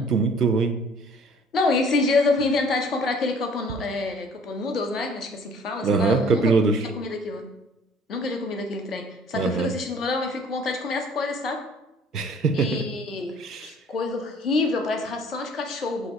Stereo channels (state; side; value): normal; both; correlation 0.54